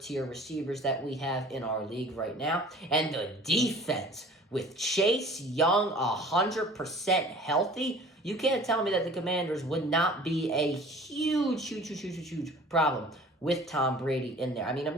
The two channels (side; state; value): both; normal; correlation 0.47